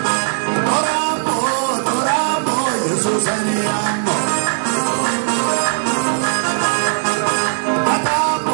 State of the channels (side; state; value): left; silent; 67 dB below the other